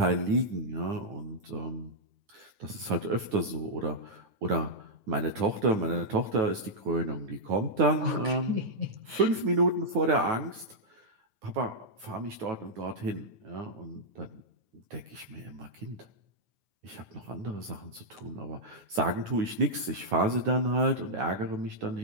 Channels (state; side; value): late; left; 9.9 ms